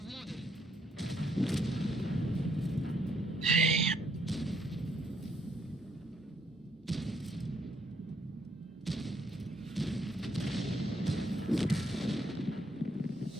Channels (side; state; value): both; normal; correlation 0.71